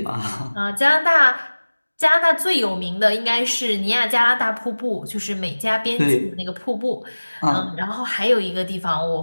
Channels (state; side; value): inverted; both; correlation -1.00